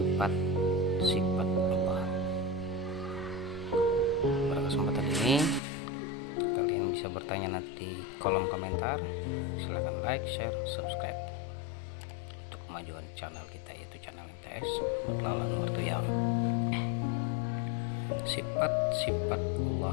Allah. Pada kesempatan ini kalian bisa bertanya nanti di kolom komentar. Silahkan like, share, subscribe untuk kemajuan channel kita, yaitu channel MTS Mutlalan Wartoyam. Sifat-sifat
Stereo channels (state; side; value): drops out; right; at 5.6 s